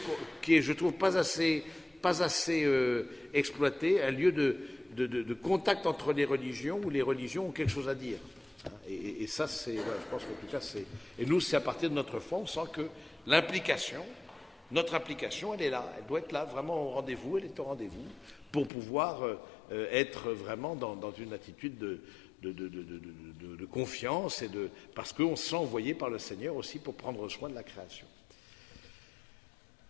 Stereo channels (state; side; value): drops out; right; at 18.7 s